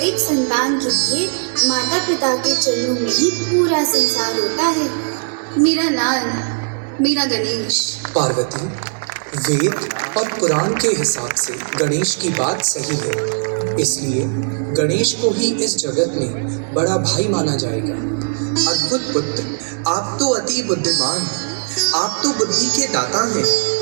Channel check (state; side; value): silent; left; digital silence